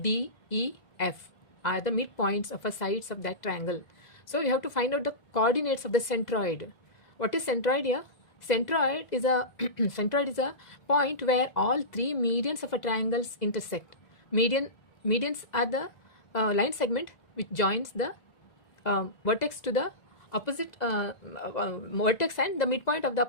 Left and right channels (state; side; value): late; right; 2.0 ms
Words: E, F are the midpoints of the sides of that triangle. So you have to find out the coordinates of the centroid. What is centroid here? Centroid is a centroid is a point where all three medians of a triangles intersect. Medians are the line segment which joins the vertex to the opposite vertex and the midpoint of the